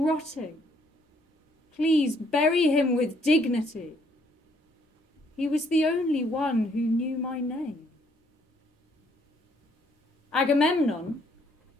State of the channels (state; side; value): normal; both; correlation 0.67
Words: Please bury him with dignity. He was the only one who knew my name. Agamemnon